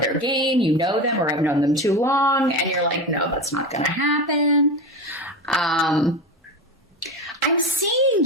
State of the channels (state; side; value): normal; both; correlation 0.23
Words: game, you know them or have known them too long, and you're like, no, that's not going to happen. I'm seeing